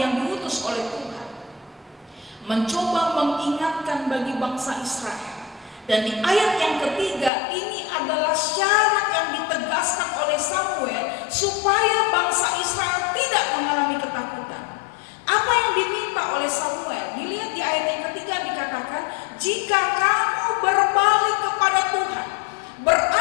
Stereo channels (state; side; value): drops out; right; at 7.3 s